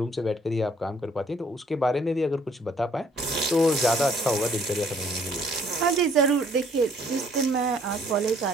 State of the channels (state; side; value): normal; both; correlation 0.62